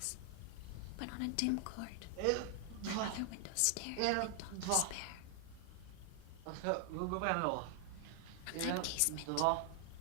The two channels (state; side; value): different; both; correlation 0.00